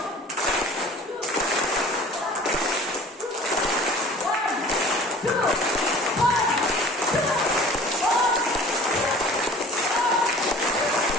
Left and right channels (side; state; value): both; normal; correlation 0.45